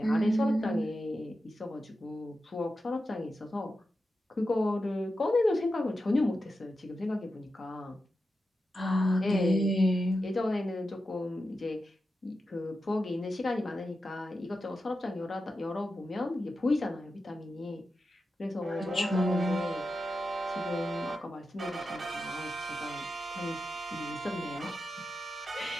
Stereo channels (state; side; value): normal; both; correlation 0.90